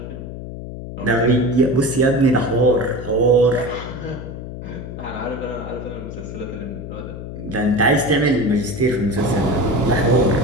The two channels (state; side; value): noise; left; hum, 10 dB below the sound